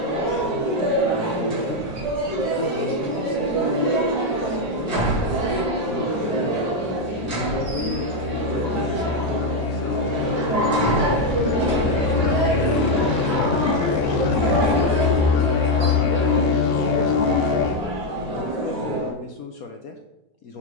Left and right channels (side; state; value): both; normal; correlation 0.03